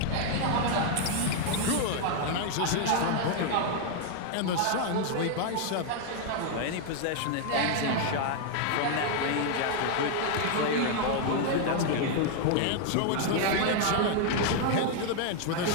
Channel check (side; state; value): both; different; correlation 0.00